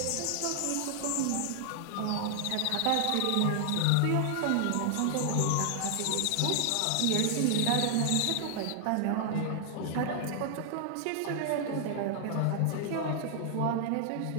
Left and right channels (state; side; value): different; both; correlation 0.00